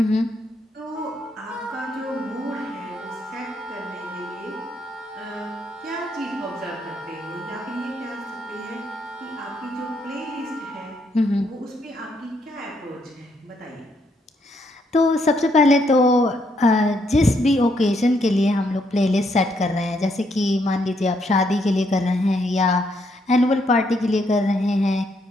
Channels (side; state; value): both; normal; correlation 0.74